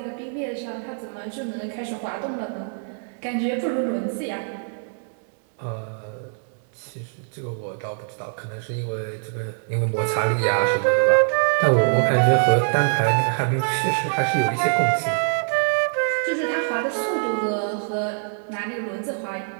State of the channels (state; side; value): silent; left; digital silence